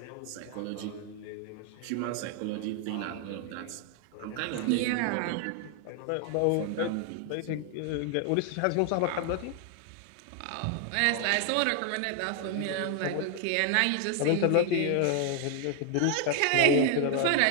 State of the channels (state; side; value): different; both; correlation 0.00